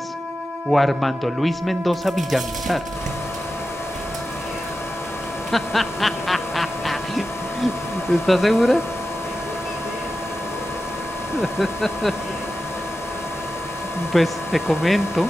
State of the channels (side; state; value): both; normal; correlation 0.92